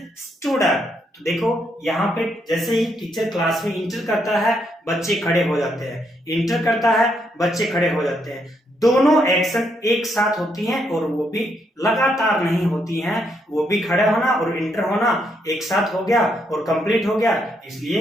stood up. तो देखो यहाँ पे जैसे ही टीचर क्लास में इंटर करता है बच्चे खड़े हो जाते हैं, इंटर करता है बच्चे खड़े हो जाते हैं। दोनों एक्शन एक साथ होती हैं और वो भी लगातार नहीं होती हैं, वो भी खड़े होना और इंटर होना एक साथ हो गया और कंप्लीट हो गया,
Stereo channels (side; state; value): both; normal; correlation 0.76